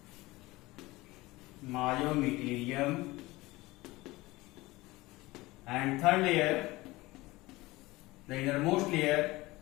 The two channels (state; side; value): quieter; right; 20.3 dB